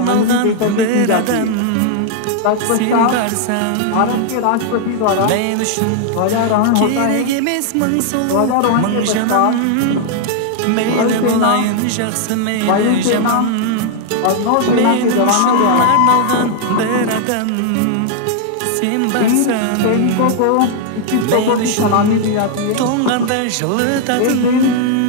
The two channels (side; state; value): both; different; correlation 0.00